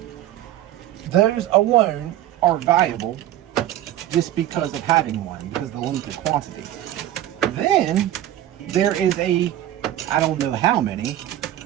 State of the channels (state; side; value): quieter; left; 13.1 dB